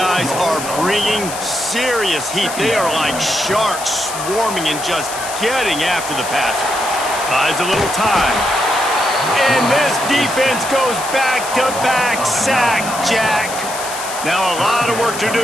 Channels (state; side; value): noise; left; hiss, 9 dB below the sound